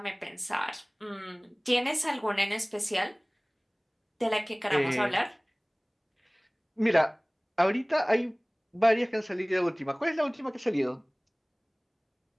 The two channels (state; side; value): identical; both; correlation 1.00